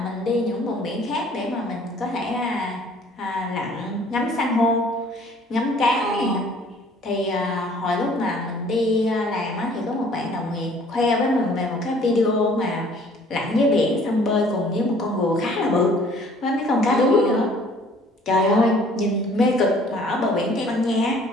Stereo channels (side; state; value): both; normal; correlation 0.55